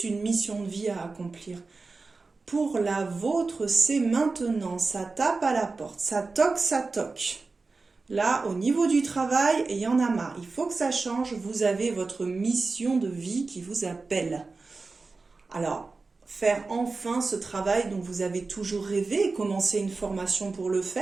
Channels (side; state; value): left; quieter; 3.9 dB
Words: une mission de vie à accomplir. Pour la vôtre, c'est maintenant. Ça tape à la porte. Ça toque, ça toque. Là, au niveau du travail, il y en a marre. Il faut que ça change. Vous avez votre mission de vie qui vous appelle. Alors, faire enfin ce travail dont vous avez toujours rêvé, commencer une formation pour le